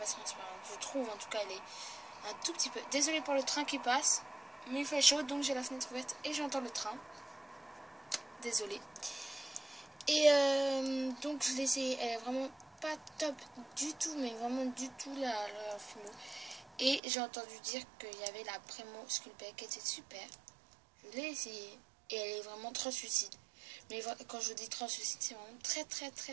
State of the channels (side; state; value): left; drops out; at 17.0 s